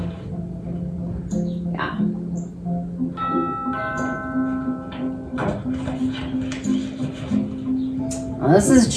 Yeah. Well, this is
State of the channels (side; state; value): both; identical; correlation 1.00